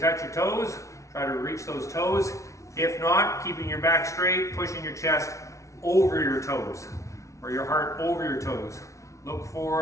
your toes, try to reach those toes. If not, keeping your back straight, pushing your chest over your toes, or your heart over your toes. Look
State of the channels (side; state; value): right; late; 0.14 ms